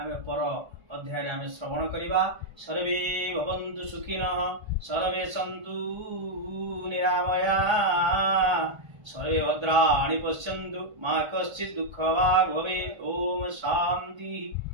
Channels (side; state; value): left; late; 1.3 ms